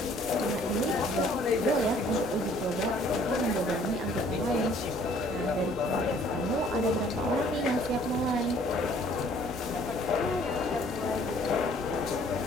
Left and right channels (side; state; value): both; normal; correlation 0.58